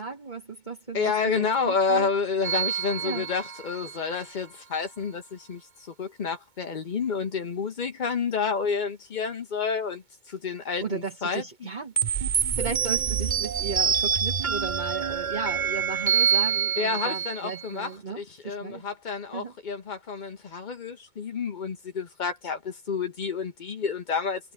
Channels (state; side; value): late; right; 2.2 ms